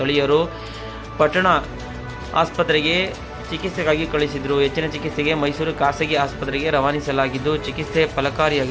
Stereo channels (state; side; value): identical; both; correlation 1.00